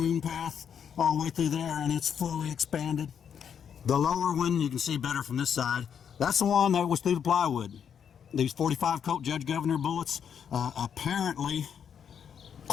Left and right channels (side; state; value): right; quieter; 7.9 dB